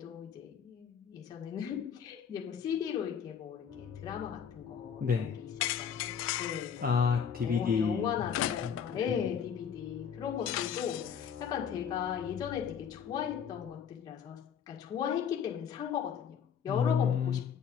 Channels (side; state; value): right; quieter; 7.6 dB